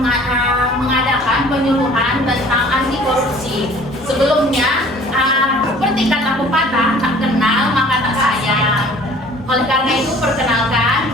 penyuluhan tentang anti korupsi. Sebelumnya, seperti kata pepatah, tak kenal maka tak sayang. Oleh karena itu, perkenalkan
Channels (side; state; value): both; normal; correlation 0.51